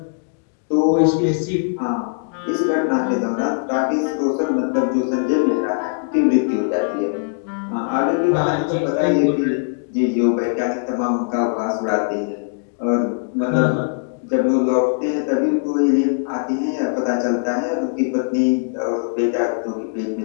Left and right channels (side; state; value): right; silent; digital silence